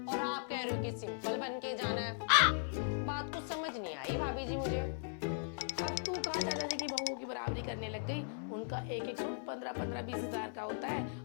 और आप कह रहे हो कि सिंपल बन के जाना है। बात कुछ समझ नहीं आई भाभी जी मुझे। अब तू कहाँ चाचा जी की बहुओं की बराबरी करने लग गई? उनका एक एक सूट 15-20 हजार का होता है,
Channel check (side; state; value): right; silent; 53 dB below the other